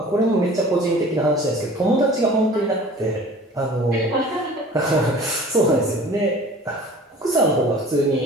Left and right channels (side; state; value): both; normal; correlation 0.45